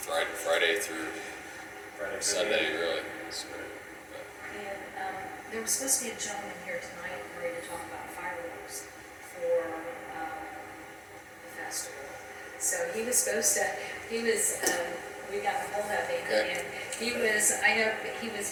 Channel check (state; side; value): identical; both; correlation 1.00